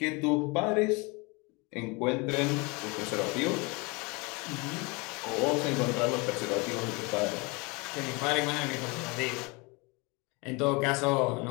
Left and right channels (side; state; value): right; quieter; 27.9 dB